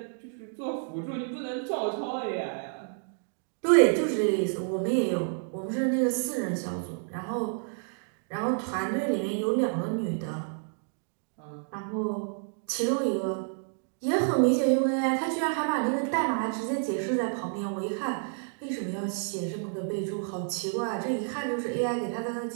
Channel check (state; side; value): silent; left; 58 dB below the other